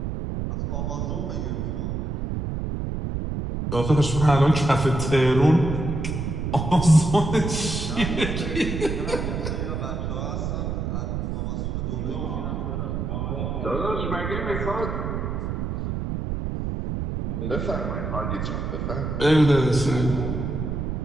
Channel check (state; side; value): noise; right; rumble, 3 dB below the sound